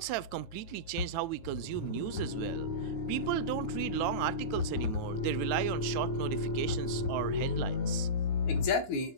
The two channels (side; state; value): right; late; 9.3 ms